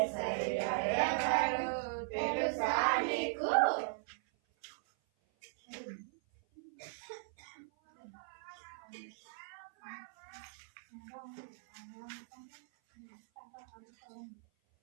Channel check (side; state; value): left; silent; 52 dB below the other